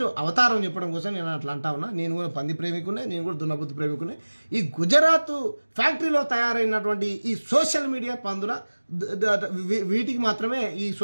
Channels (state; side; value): inverted; both; correlation -1.00